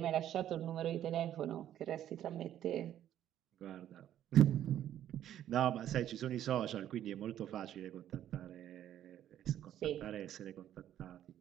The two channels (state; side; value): quieter; left; 11.4 dB